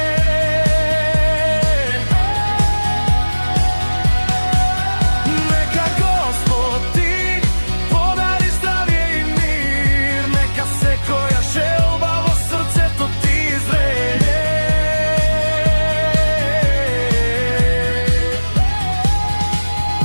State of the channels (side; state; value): both; inverted; correlation -1.00